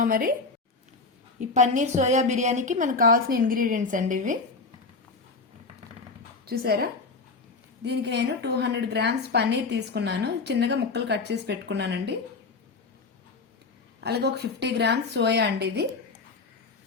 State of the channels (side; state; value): right; quieter; 4.0 dB